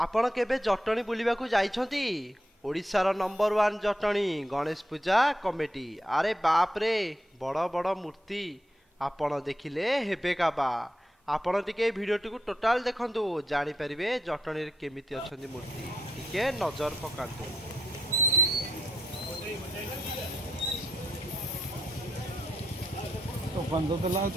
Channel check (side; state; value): both; normal; correlation 0.80